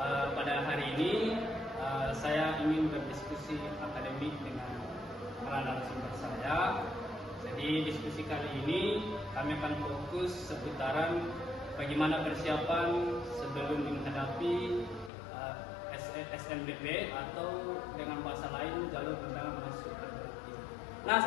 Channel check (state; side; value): drops out; right; at 15.1 s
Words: Pada hari ini saya ingin berdiskusi akademik dengan para narasumber saya. Jadi diskusi kali ini kami akan fokus seputaran bagaimana persiapan sebelum menghadapi SNBP atau dengan bahasa lain jalur undangan masuk perguruan tinggi. Nah,